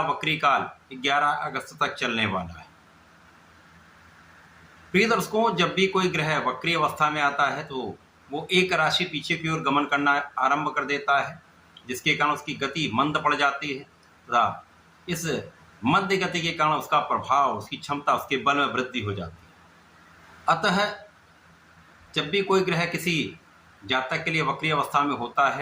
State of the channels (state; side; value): identical; both; correlation 1.00